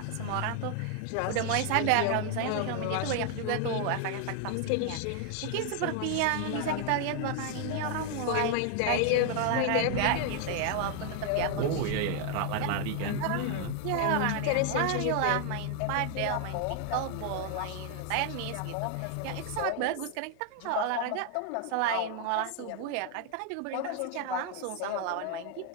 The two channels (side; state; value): both; different; correlation 0.00